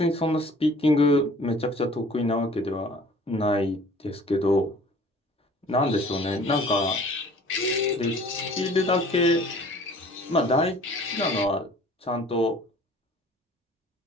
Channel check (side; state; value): both; normal; correlation 0.50